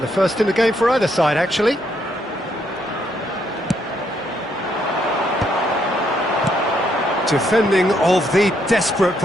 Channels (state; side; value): normal; both; correlation 0.74